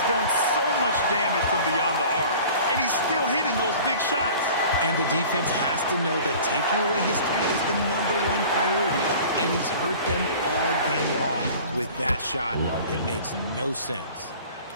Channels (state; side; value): inverted; both; correlation -0.44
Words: done so much damage from beyond the arc, and he's still hitting those big shots. And the defense has to know that taking away his three is the #1 priority, and he's hurt them all game long. With that shot, it makes no sense.